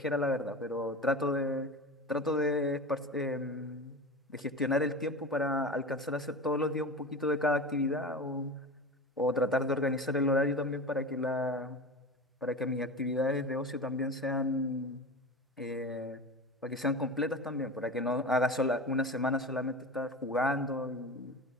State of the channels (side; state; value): both; normal; correlation 0.30